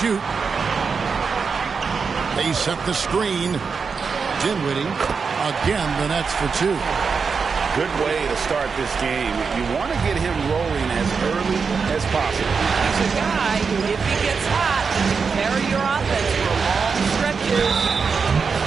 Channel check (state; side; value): quieter; left; 5.4 dB